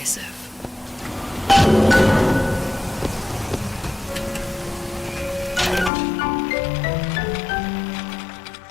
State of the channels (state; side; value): drops out; right; at 5.9 s